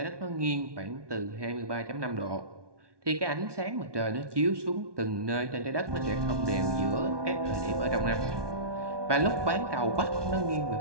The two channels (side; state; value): left; late; 1.2 ms